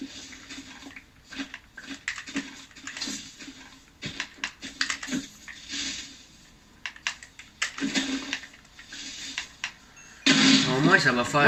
Au moins, ça va faire.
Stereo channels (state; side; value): identical; both; correlation 1.00